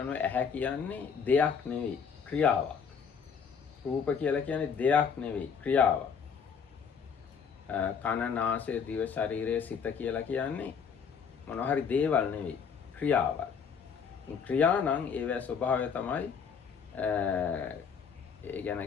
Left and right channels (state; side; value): quieter; right; 6.5 dB